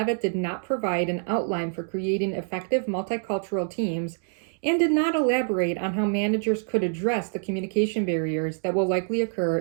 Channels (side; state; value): left; silent; 61 dB below the other